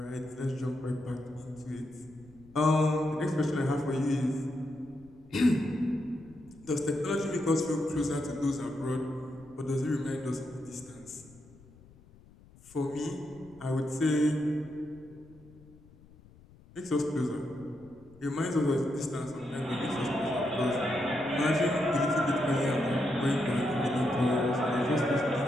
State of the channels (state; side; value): noise; left; rumble, 24 dB below the sound